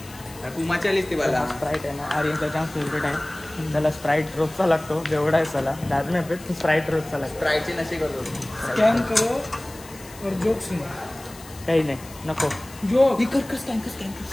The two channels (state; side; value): noise; left; hiss, 19 dB below the sound